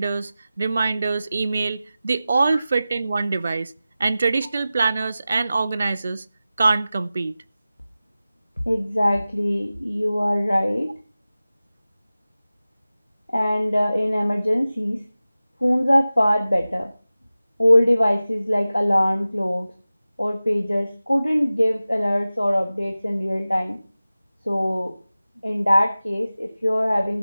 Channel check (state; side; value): inverted; both; correlation -0.96